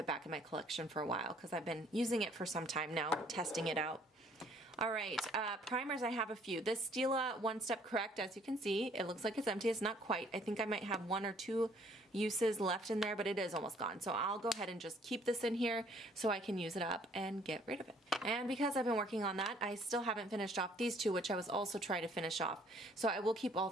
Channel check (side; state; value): both; normal; correlation 0.61